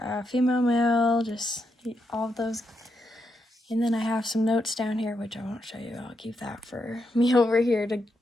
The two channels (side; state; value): both; normal; correlation 0.82